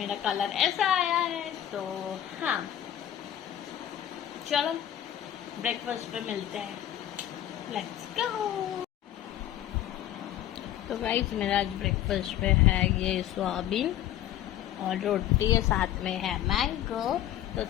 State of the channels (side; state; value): right; quieter; 11.9 dB